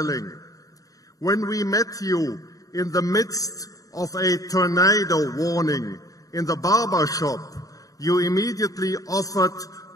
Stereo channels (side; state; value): right; late; 0.17 ms